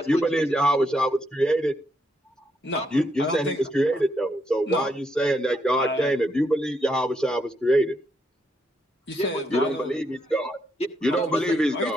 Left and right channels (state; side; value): normal; both; correlation 0.78